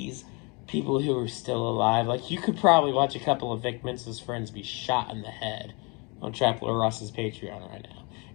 people who are still alive. Like, you could probably watch a couple of Vic Mensa's friends be shot in the head on Trapler Ross's Patreon right now.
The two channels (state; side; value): quieter; right; 30.5 dB